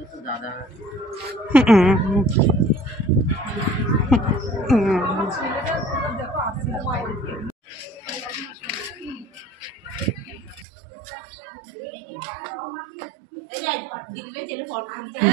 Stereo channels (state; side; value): drops out; left; at 10.7 s